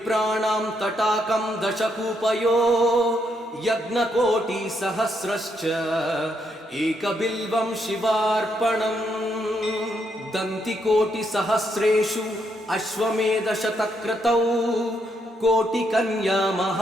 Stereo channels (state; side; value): normal; both; correlation 0.77